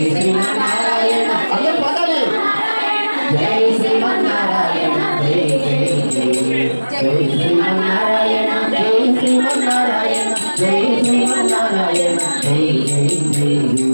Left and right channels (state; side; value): inverted; both; correlation -1.00